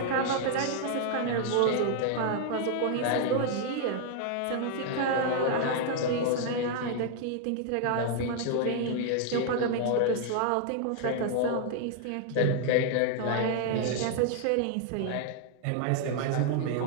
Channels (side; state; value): both; different; correlation 0.00